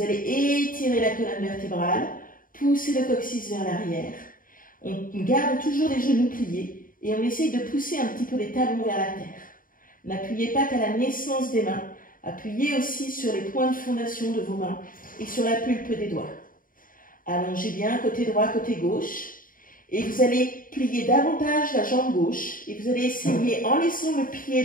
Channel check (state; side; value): late; right; 0.40 ms